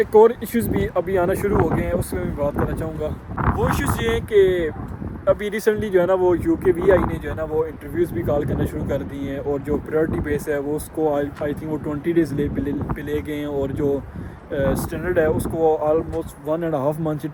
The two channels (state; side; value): identical; both; correlation 1.00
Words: اور ایشوز بھی ابھی آنا شروع ہو گئے ہیں, اس میں بھی بات کرنا چاہوں گا. وہ ایشوز یہ ہیں کہ ابھی ریسنٹلی جو ہے نا وہ UK VI نے جو ہے نا وہ انٹرویوز بھی کال کرنا شروع کر دی ہیں, اور جو پریورٹی بیس ہے وہ اس کو آئی تھنک وہ 20 days پہ لے گئے ہیں, اور جو اسٹینڈرڈ ہے اس کو آلموسٹ 1.5 months یا